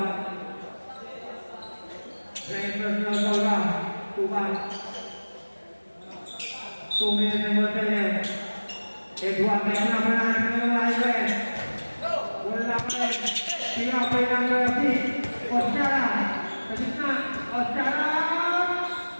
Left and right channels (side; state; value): both; inverted; correlation -1.00